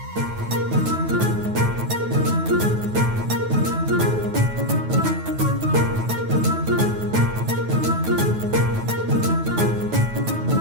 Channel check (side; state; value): left; late; 9.3 ms